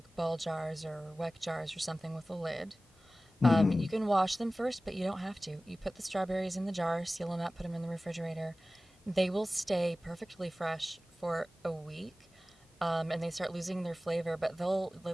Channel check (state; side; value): normal; both; correlation 0.97